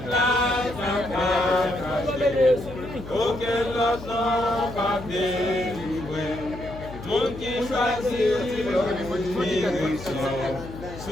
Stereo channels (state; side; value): noise; left; hum, 13 dB below the sound